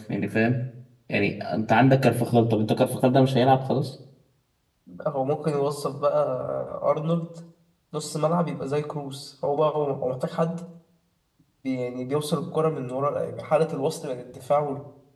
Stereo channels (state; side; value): identical; both; correlation 1.00